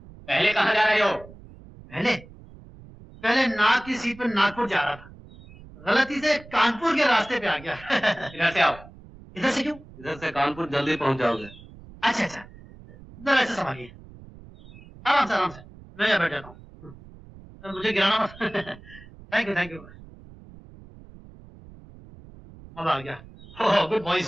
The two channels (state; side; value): noise; right; rumble, 20 dB below the sound